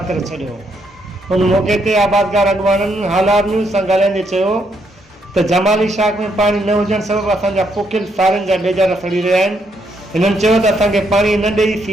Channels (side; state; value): both; normal; correlation 0.75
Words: करे छॾियो। उन मौके ते आबादगार अॻवाननि हालात न्यूज़ सां ॻाल्हाईंदे चयो त जमाली शाख में पानी न हुजण सबबि असांजा पोखियल सारनि जा बेजार सड़ी रहिया आहिनि। हिननि चयो त असांखे पाणी न ॾेई